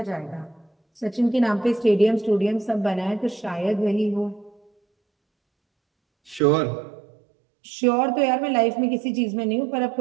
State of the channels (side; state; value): left; drops out; at 6.4 s